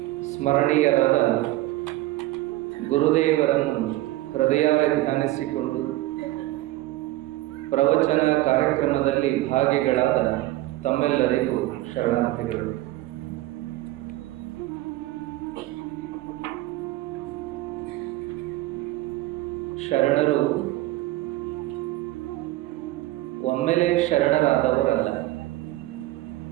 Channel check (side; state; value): left; quieter; 17.2 dB